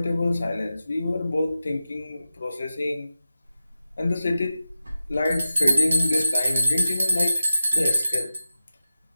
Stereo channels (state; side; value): inverted; both; correlation -0.92